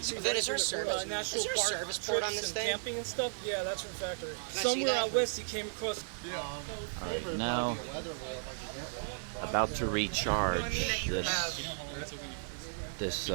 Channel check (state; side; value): silent; left; digital silence